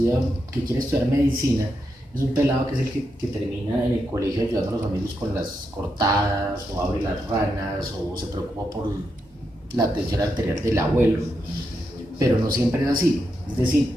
que quiere estudiar medicina es un pelado que es el que termina en el colegio ayudando a los amigos con las cortadas o abre las ranas o se preocupa por la tensión arterial del abuelo, pero no siempre es así. Es decir,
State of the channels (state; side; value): normal; both; correlation 0.84